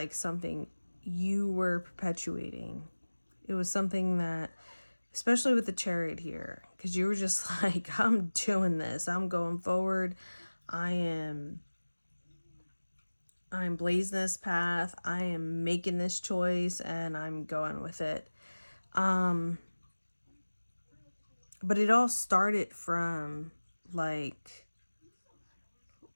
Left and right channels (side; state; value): both; inverted; correlation -1.00